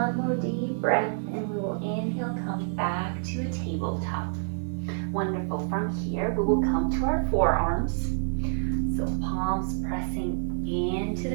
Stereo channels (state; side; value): silent; left; digital silence